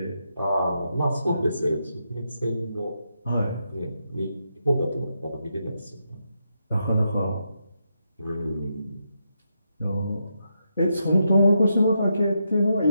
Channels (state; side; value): inverted; both; correlation -0.83